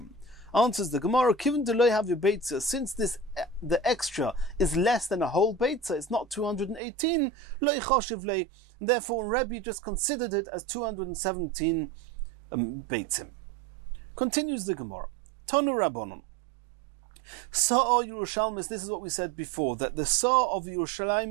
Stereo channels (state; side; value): drops out; left; at 6.8 s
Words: Answers the Gemara, Kiven deloy have your beitza, since the extra is less than a whole beitza, it's not 218, loy choshev lei, therefore Rebbe just considered it as 217 beitzim. Continues the Gemara. Tonu Rabbanon. Sa'a Yerushalmis, this is what we said before, that the Sa'a of